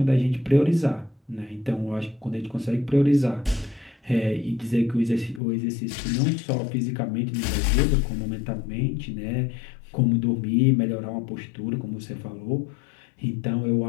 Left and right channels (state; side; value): drops out; right; at 5.4 s